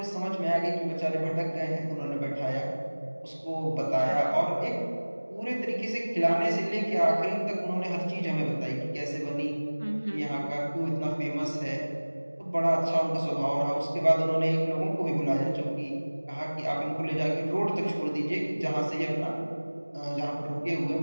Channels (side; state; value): both; inverted; correlation -1.00